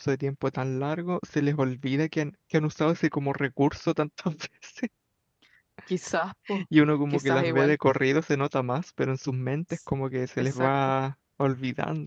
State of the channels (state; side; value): identical; both; correlation 1.00